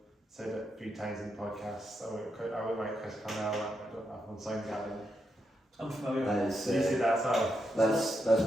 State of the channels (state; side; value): normal; both; correlation 0.82